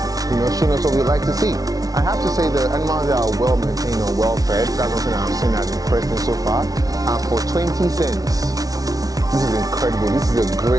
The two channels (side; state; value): left; late; 0.18 ms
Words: you know, showing us what we like to see. I have to say the animals are well maintained and well fed. That's something I've seen that has impressed me so far. And for 20 cents, this is incredible. This is a